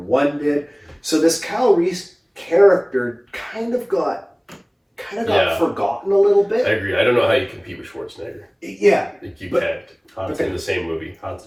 did. So this Kyle Reese character kind of got forgotten a little bit. I agree. I don't know how you compete with Schwarzenegger. Yeah. You can't. It's in the same movie. Hard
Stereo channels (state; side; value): identical; both; correlation 1.00